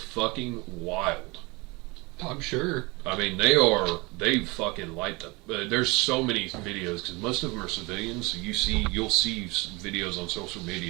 fucking wild. I'm sure. I mean, they fucking light the. There's so many videos because most of them are civilians. So you'll see videos on social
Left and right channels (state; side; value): quieter; left; 25.3 dB